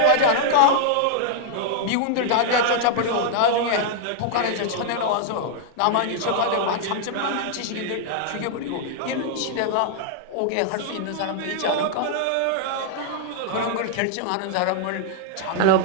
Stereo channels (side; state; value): both; different; correlation -0.01